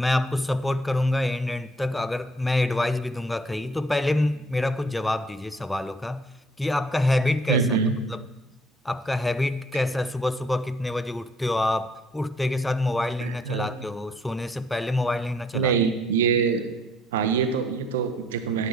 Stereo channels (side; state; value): both; normal; correlation 0.63